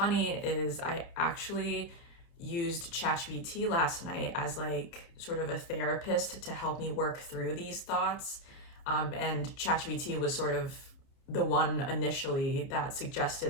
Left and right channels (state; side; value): late; right; 30 ms